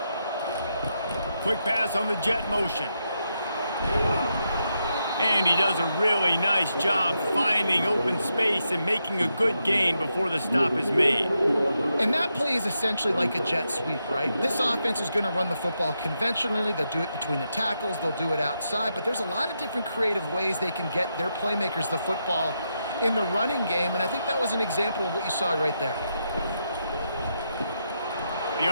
Quick pass on the jet motion. And he does a really nice job finding open space and making a good gain before the stop is made. And that play is essentially like a jet sweep, right? This offense is going to run the football conventionally. They'll do it between the tackles. They'll do it outside. But there's a lot of different creative ways they can get their playmakers the football in the running game. And I think that was an example of what you saw right there. The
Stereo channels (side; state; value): both; inverted; correlation -0.83